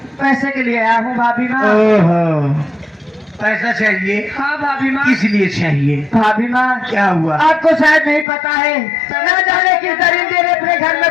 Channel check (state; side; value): drops out; right; at 8.2 s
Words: पैसे के लिए आया हूँ भाभी माँ। ओहो, पैसा चाहिए? हाँ भाभी माँ। किस लिए चाहिए? भाभी माँ, क्या हुआ? आपको शायद नहीं पता है, न जाने किस दरिंदे ने अपने घर में